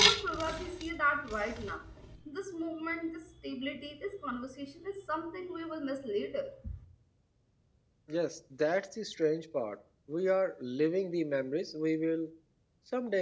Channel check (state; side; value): identical; both; correlation 1.00